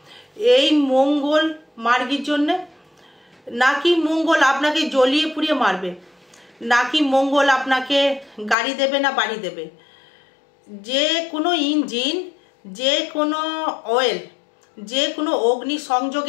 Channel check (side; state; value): right; drops out; at 8.6 s